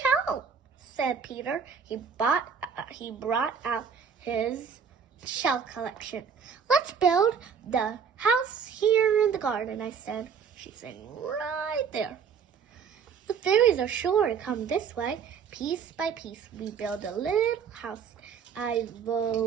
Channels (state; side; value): quieter; left; 6.6 dB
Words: help, said Peter. He brought out his shell collection. Let's build the house here in the garden, I said. She's saying right there. The fairies are sure to come this way. Piece by piece, we build a little house. I